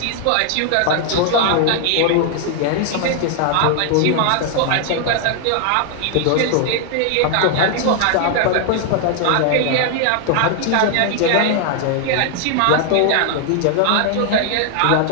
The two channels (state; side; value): different; both; correlation 0.00